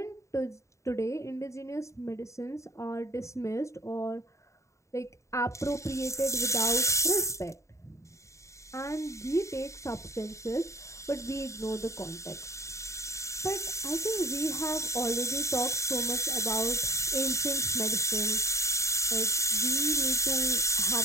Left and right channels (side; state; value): right; late; 0.14 ms